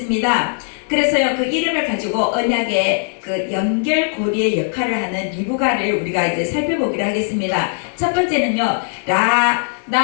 그래서요, 그 이름을 가지고 언약의 그 연결고리의 역할을 하는 리브가를 우리가 이제 살펴보기로 하겠습니다. 첫 번째는요,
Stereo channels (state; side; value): silent; right; 57 dB below the other